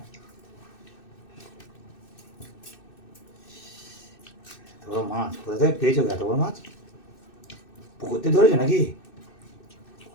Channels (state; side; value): late; right; 2.6 ms